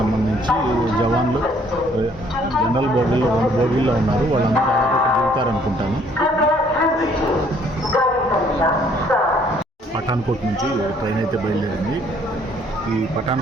జవాన్లు జనరల్ బోగీల్లో 2 బోగీల్లో ఉన్నారు. వాళ్ళందరూ దాదాపు ఇక్కడ దిగుతారనుకుంటాను. పఠాన్కోట్ నుంచి ట్రైన్ అయితే బయలుదేరింది. ఈ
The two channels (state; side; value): normal; both; correlation 0.62